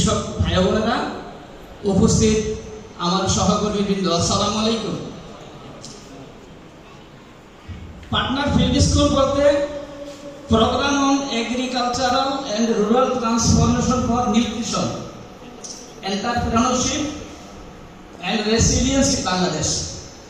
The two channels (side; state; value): both; identical; correlation 1.00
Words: ভাই বোনেরা, উপস্থিত আমার সহকর্মী বৃন্দ, আসসালামু আলাইকুম। পাটনার ফিল্ড স্কুল বলতে program on agricultural and rural transformation for nutrition, entrepreneurship and resilience in Bangladesh.